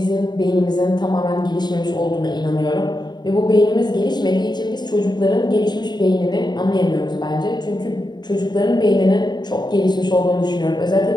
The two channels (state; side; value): late; right; 0.21 ms